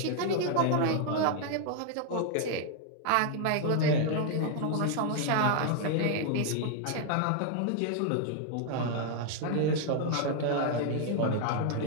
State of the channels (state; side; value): different; both; correlation 0.00